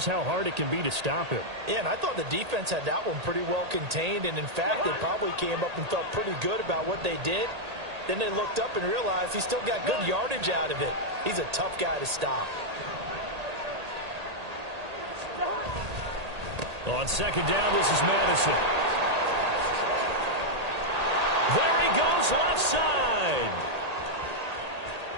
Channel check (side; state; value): left; late; 1.8 ms